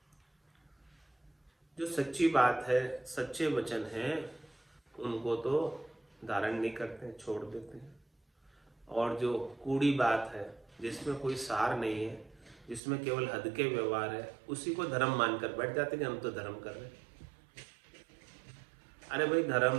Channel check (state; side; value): drops out; left; at 12.8 s